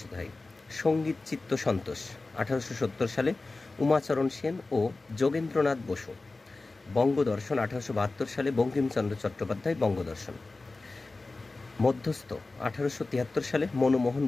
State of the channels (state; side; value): quieter; right; 3.4 dB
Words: হয়। সঙ্গীত চিত্ত সন্তোষ 1870 সালে উমাচরণ সেন ও যোগেন্দ্রনাথ বসু। বঙ্গদর্শন 1872 সালে বঙ্কিমচন্দ্র চট্টোপাধ্যায় বঙ্গদর্শন। মধ্যস্থ 1873 সালে মনমোহন